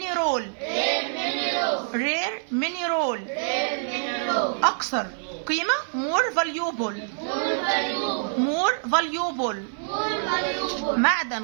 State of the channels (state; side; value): silent; left; 55 dB below the other